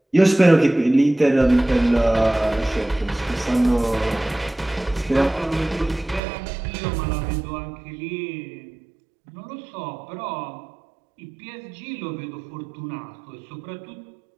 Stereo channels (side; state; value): left; drops out; at 6.2 s